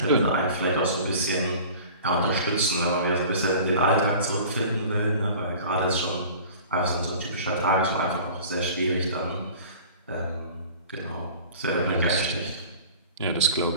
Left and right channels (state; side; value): inverted; both; correlation -0.43